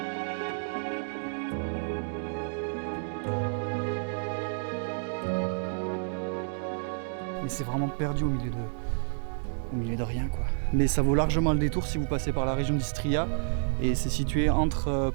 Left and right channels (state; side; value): silent; left; digital silence